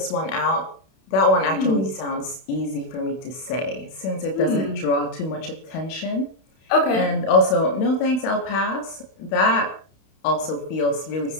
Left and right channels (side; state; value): right; late; 31 ms